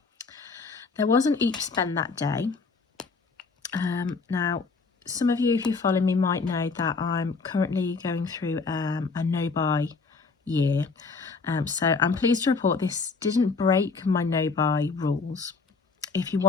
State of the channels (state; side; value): quieter; right; 4.5 dB